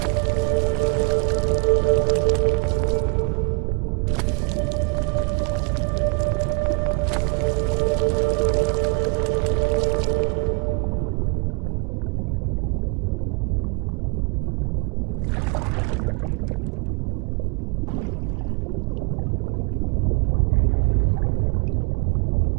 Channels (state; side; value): quieter; left; 33.4 dB